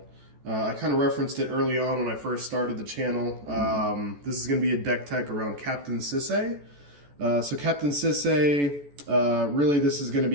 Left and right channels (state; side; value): late; left; 14 ms